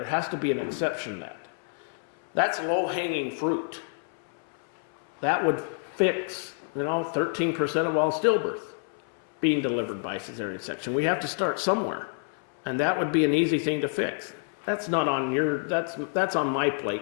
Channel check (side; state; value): right; silent; 59 dB below the other